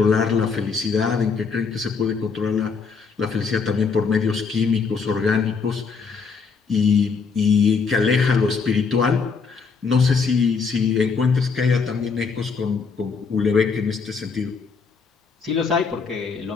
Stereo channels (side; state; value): right; quieter; 5.2 dB